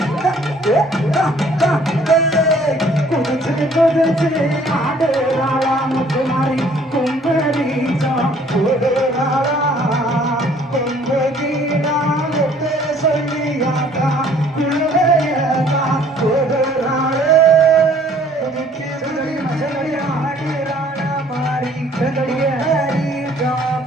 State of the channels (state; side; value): normal; both; correlation 0.58